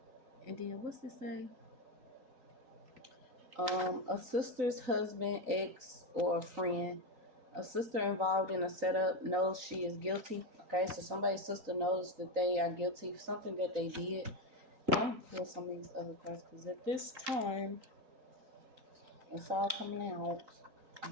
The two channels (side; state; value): left; late; 3.8 ms